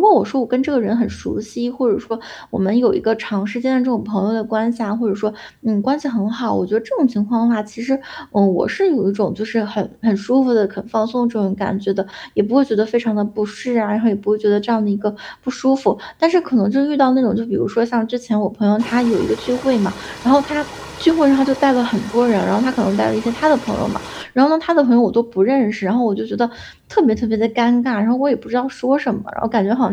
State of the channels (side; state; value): both; identical; correlation 1.00